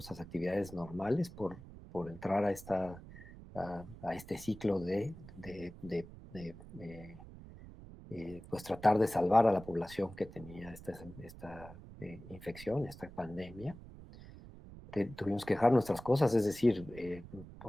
actividades normales por entrar a este ciclo pues tratar de salvar a la población que tenía esta infección, esta pandemia. Tuvimos que dejar nuestras cosas, es decir,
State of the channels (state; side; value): noise; right; rumble, 16 dB below the sound